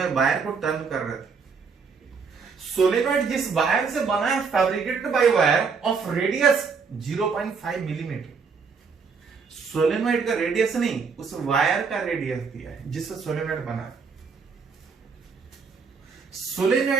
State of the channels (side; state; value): left; quieter; 5.3 dB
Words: वायर को टर्न कर रहे थे, सोलेनॉइड जिस वायर से बना है fabricated by wire of radius 0.5 millimetre. Solenoid का रेडियस नहीं, उस वायर का रेडियस दिया है जिससे सोलेनॉइड बना है।